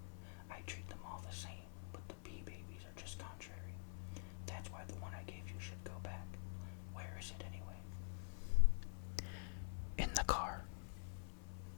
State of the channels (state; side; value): silent; right; digital silence